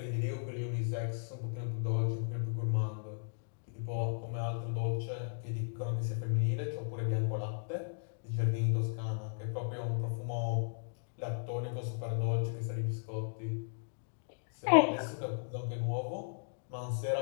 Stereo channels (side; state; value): right; silent; digital silence